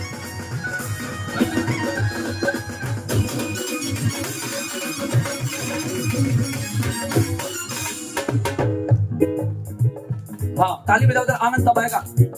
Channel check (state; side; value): identical; both; correlation 1.00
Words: हाँ ताली बजाओ, उधर आनंद तब आएगा।